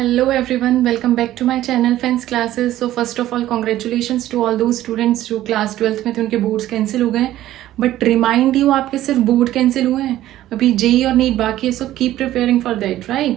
everyone, welcome back to my channel Fence Classes. So first of all, congratulations to all those students जो class 12th में थे उनके boards cancel हो गए हैं. But remind you आपके सिर्फ बोर्ड कैंसिल हुए हैं, अभी जेई और नीट बाकी है. So keep preparing for that,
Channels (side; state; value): left; quieter; 14.0 dB